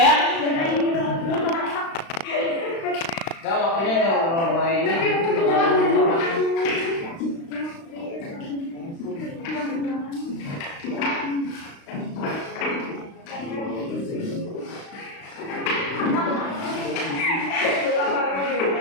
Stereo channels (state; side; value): late; right; 36 ms